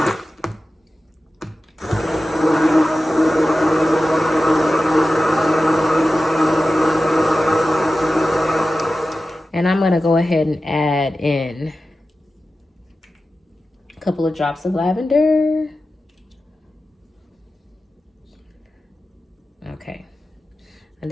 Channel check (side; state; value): both; normal; correlation 0.94